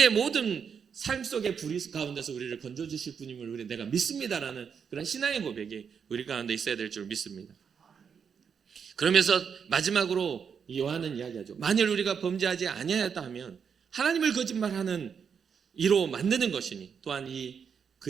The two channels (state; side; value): quieter; left; 6.8 dB